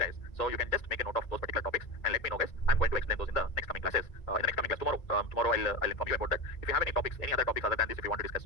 so you can just make a note of those particular topics and let me know, guys. I'm going to explain those in the next coming classes. In the next coming class tomorrow I'll inform you about that. If you have any topics, any other topics other than this, if you want to discuss,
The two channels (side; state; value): right; late; 1.9 ms